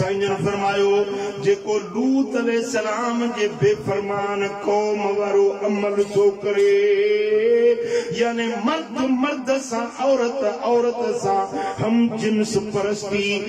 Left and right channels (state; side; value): identical; both; correlation 1.00